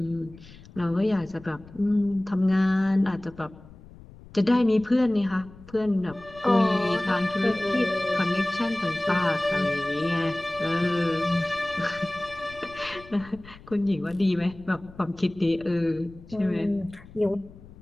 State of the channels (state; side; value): noise; left; rumble, 20 dB below the sound